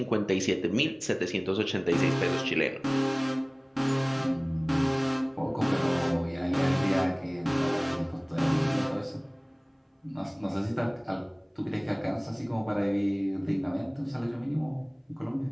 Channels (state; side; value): identical; both; correlation 1.00